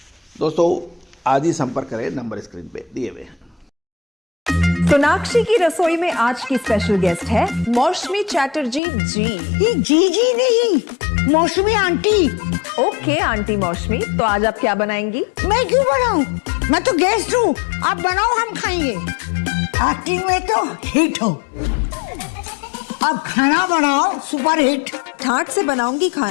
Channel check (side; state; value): right; drops out; at 8.8 s